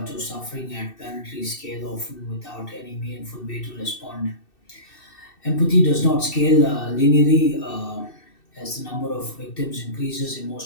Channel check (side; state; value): right; late; 2.6 ms